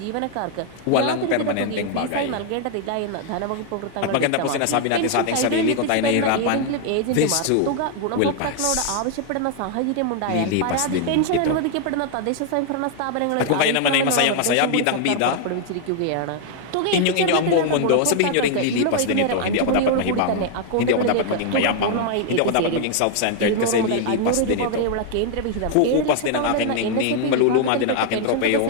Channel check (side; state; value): both; different; correlation 0.00